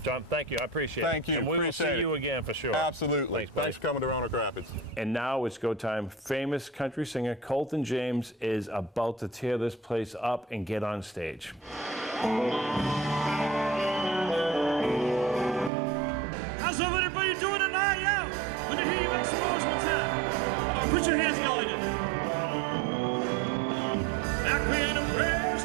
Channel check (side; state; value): left; drops out; at 15.7 s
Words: John, thank you. I appreciate it. Thank you. And we will see you again for sure. Absolutely. Thanks for coming to Roanoke Rapids. And now it's go time. Famous country singer Colton James is about to tear this place up and get on stage. How's everybody doing tonight? Yeah. Let me hear you make some noise one time. Put your hands together. Back when the prayer